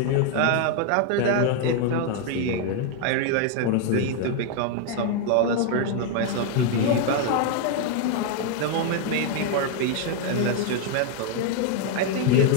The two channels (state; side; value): different; both; correlation 0.00